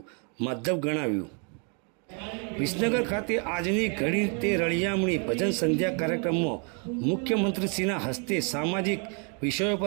માધ્યમ ગણાવ્યું। વિસનગર ખાતે આજની ઘડી તે રળિયામણી ભજન સંધ્યા કાર્યક્રમમાં મુખ્યમંત્રીશ્રીના હસ્તે સામાજિક વિષયો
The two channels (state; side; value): quieter; left; 38.5 dB